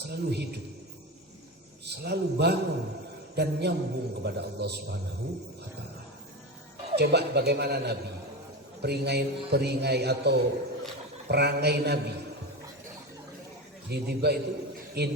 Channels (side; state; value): both; normal; correlation 0.22